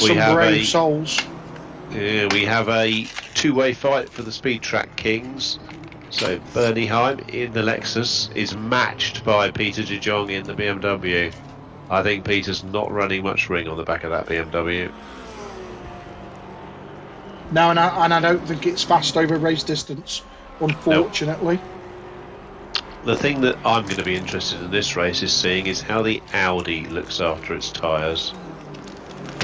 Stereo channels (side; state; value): both; identical; correlation 1.00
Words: some brave souls. Yeah, we have a two-way fight for the Speed Track Kings. So Bernie Heim in the Lexus is matched by Peter de Jong in the BMW. I think Peter's not running much ring on the back of that BMW. No, and I don't think it's fast over race distance, unfortunately. Nope. The thing that I'm going to be interested in this race is seeing is how the Audi looks after its tyres.